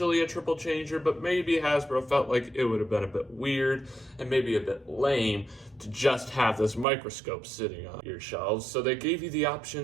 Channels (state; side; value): drops out; left; at 6.9 s